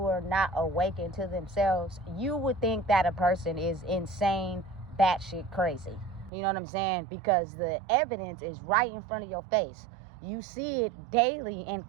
are not awakened to themselves, you would think that a person is insane, batshit crazy. You know what I'm saying? Because the evidence is right in front of your face. You see it daily and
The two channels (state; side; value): drops out; left; at 6.3 s